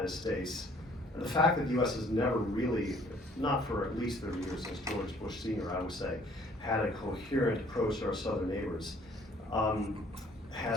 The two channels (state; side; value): normal; both; correlation 0.58